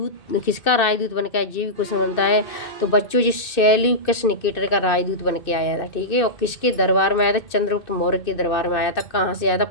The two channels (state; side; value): late; right; 2.6 ms